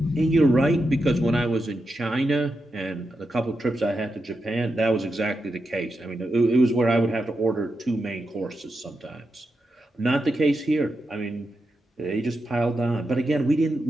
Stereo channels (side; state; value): both; normal; correlation 0.87